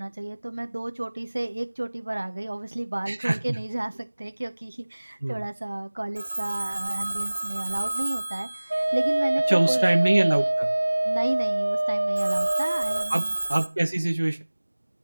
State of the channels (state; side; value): inverted; both; correlation -1.00